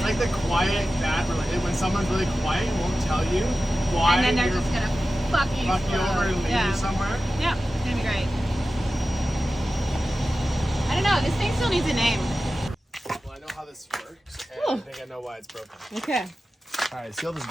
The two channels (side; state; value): both; normal; correlation 0.94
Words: like the quiet bad relationship. When someone's really quiet and won't tell you why. And then they're just gonna fuck you over and leave you somewhere. Yeah, it's gonna be great. I don't know. This thing still needs a name. Well, I know how this works, and I think I know why it's broken. Okay. All right, see all this